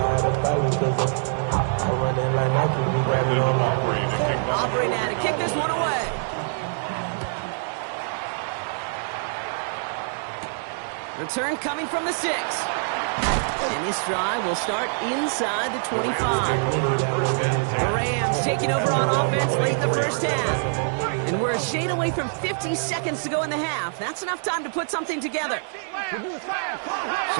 Return coming from the 6. And this drive will start inside the 25. The Rams taking over on offense late in the first half. And we're a shade away from 50 seconds to go in the half. That's enough time to put something together.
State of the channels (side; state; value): left; silent; digital silence